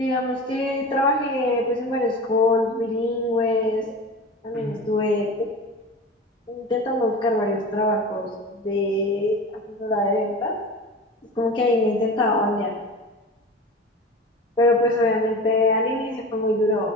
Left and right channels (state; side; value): normal; both; correlation 0.32